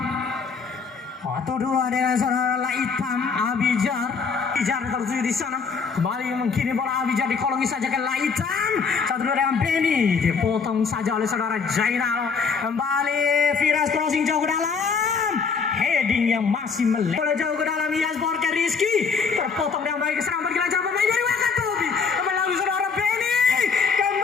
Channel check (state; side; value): quieter; right; 5.5 dB